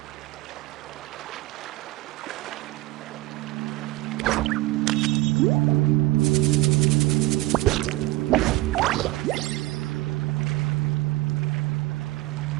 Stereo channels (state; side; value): quieter; left; 18.7 dB